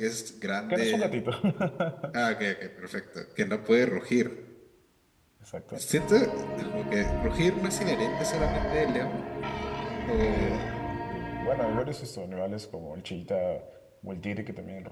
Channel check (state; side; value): identical; both; correlation 1.00